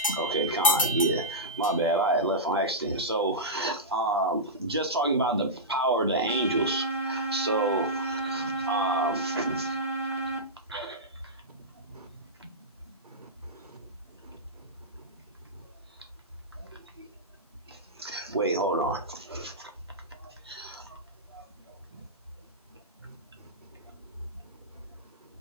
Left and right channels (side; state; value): both; normal; correlation -0.14